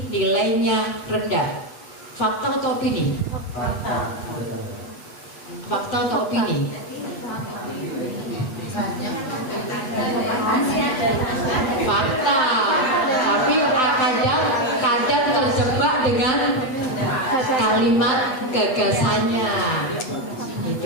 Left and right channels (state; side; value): late; right; 8.2 ms